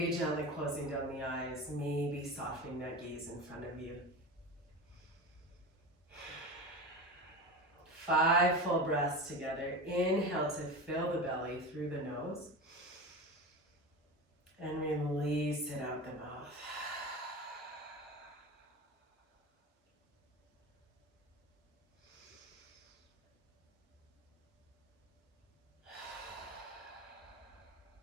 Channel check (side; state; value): both; normal; correlation 0.27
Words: gently closing down the eyes, maybe softening that gaze in front of you. 5 full breaths together. Inhale to fill the belly through the nose. And release it out the mouth.